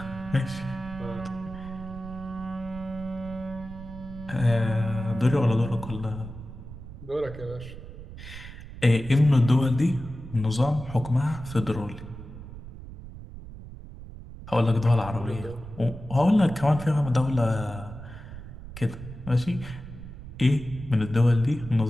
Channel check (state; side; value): noise; right; rumble, 13 dB below the sound